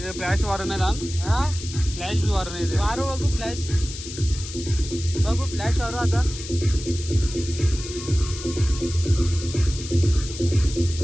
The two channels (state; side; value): noise; left; hiss, 11 dB below the sound